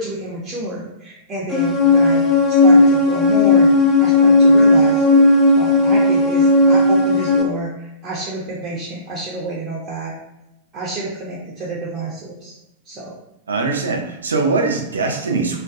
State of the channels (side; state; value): both; inverted; correlation -0.48